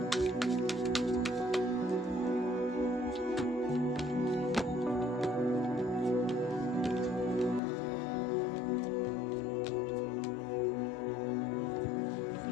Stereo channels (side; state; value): right; drops out; at 7.6 s